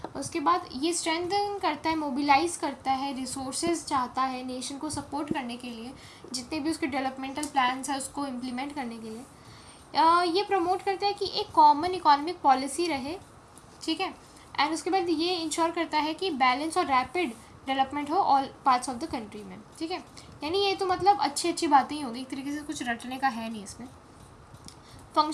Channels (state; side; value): identical; both; correlation 1.00